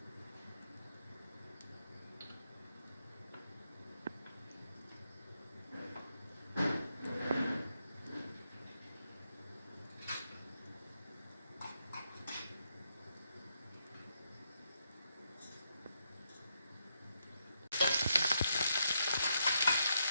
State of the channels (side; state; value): both; inverted; correlation -0.79